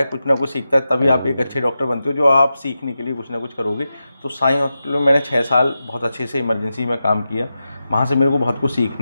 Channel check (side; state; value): both; inverted; correlation -0.90